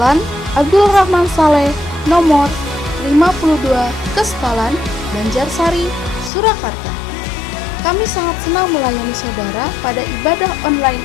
Abdul Rahman Saleh, nomor 52, Kestalan, Banjarsari, Surakarta. Kami sangat senang melayani saudara pada ibadah online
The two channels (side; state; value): right; drops out; at 6.3 s